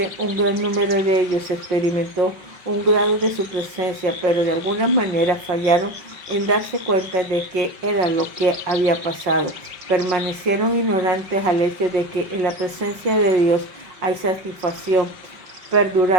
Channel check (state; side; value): late; left; 5.3 ms